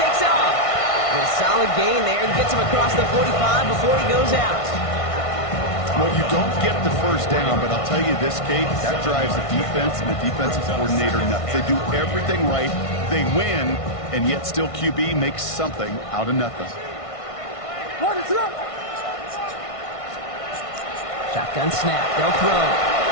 off. And a solid gain there and gets him across the 45 before he goes out. Well, you don't get the 1st down, but I'll tell you this, Kate, that drives the defense and the defensive coordinator nuts. They do everything right, they win, and yet still QB makes something out of nothing. Shotgun snap, they'll throw.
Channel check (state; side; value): late; right; 1.5 ms